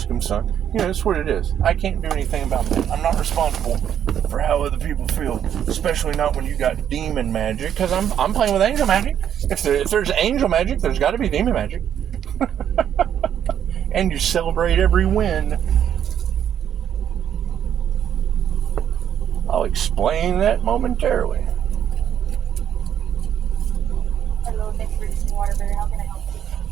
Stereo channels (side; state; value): left; quieter; 9.5 dB